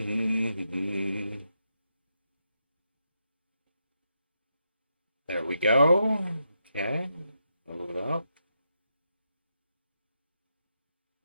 There we go. Okay, load up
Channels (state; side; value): inverted; both; correlation -0.83